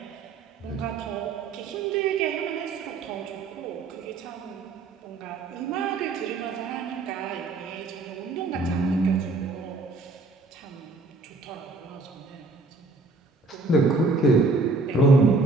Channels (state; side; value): quieter; left; 3.5 dB